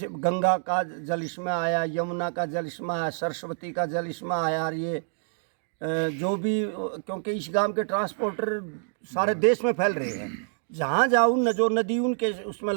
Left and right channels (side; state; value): left; silent; digital silence